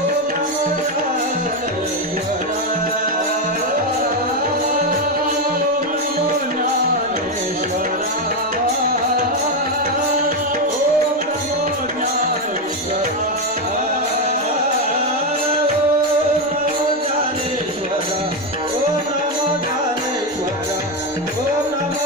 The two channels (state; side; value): normal; both; correlation 0.08